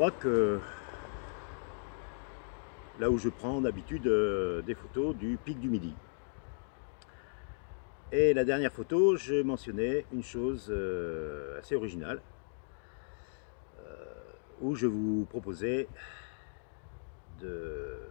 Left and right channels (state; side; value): silent; right; digital silence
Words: que là où je prends d'habitude des photos du pic du Midi. Et la dernière photo, je mentionnais une chose assez originale, où je vous proposais de